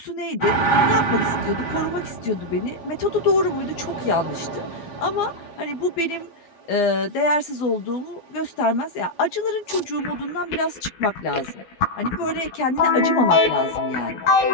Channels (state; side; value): late; right; 12 ms